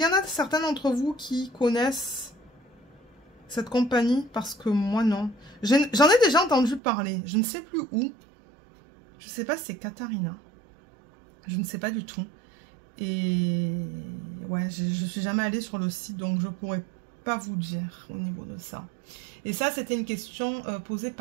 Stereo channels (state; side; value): drops out; left; at 6.8 s